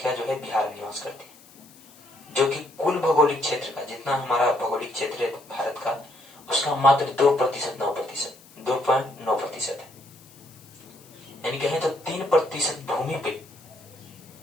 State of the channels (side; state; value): left; noise; hiss, 24 dB below the sound